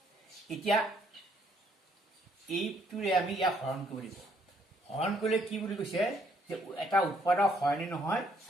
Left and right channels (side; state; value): both; normal; correlation 0.68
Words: এতিয়া এইটোৰে আমি ইয়াক হৰণ কৰিব লাগিব। হৰণ কৰিলে কি বুলি কৈছে যে এটা উৎপাদক হয় নে নহয়